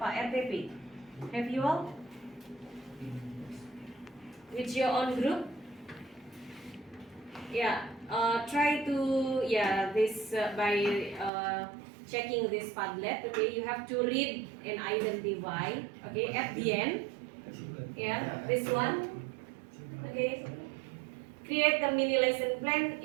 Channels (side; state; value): left; drops out; at 11.3 s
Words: Have you all? With your own group? Yeah. Try to this by checking this Padlet, okay, you have to read and identify, okay, at the end, yeah, this one, okay, create the mini lesson plan